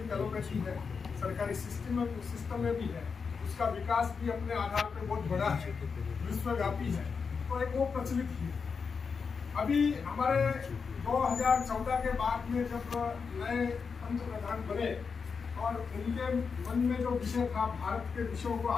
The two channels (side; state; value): right; quieter; 5.5 dB